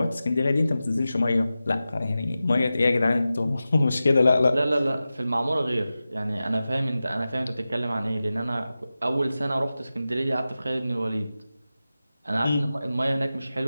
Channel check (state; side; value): inverted; both; correlation -0.94